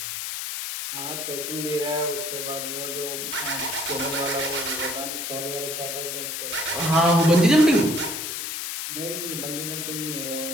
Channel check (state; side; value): noise; left; hiss, 4 dB below the sound